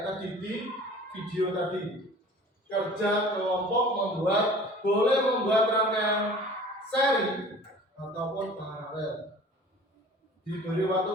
tadi di video tadi, kerja kelompok boleh membuat rangkaian seri ataupun paralel. Diberi waktu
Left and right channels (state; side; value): normal; both; correlation 0.45